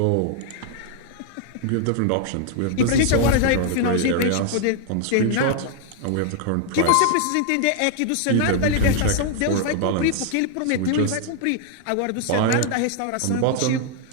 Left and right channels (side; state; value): both; different; correlation 0.00